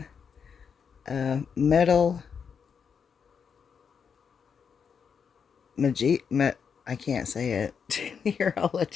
metal I can't say it. Here, I'll let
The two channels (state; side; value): quieter; right; 6.6 dB